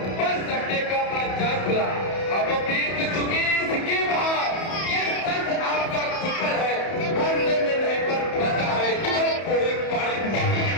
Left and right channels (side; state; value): right; late; 31 ms